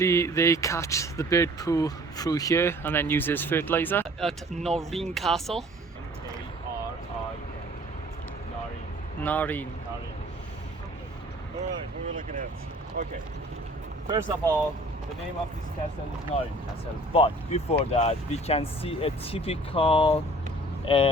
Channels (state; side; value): normal; both; correlation 0.51